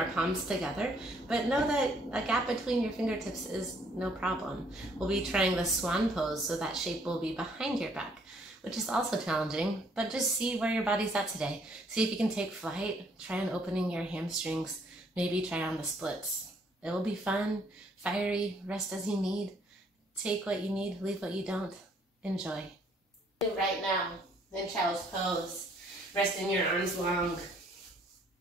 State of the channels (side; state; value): both; normal; correlation 0.65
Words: palms together, but know that a gap between your fingertips is no problem. We'll be trying the swan pose, so that shape will be behind your back, which is also challenging, but just see where your body's at today. See if you can take flight, try on opening your hamstrings, maybe try on the splits. It will be fun, fiery, rest as you need. Take what you need, leave what you don't. Enjoy. Right now, in child's pose, resting your arms long.